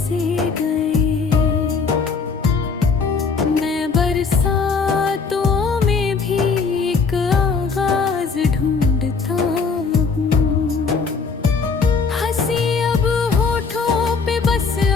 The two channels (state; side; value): quieter; right; 4.9 dB